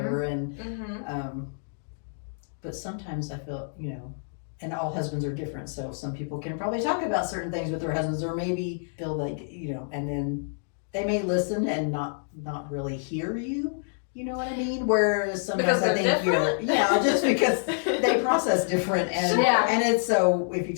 And but sometimes I feel, and all husbands are different, so some people can probably talk about certain things with their husbands, or maybe feel like, and then they may listen and not really hear you. You know what I mean? Whereas sometimes Because I think different? just because they process different, and Sure. and it's so if you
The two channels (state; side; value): silent; right; digital silence